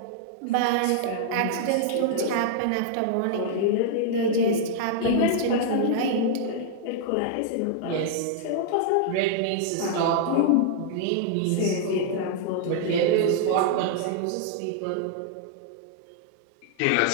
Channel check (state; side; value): different; both; correlation -0.01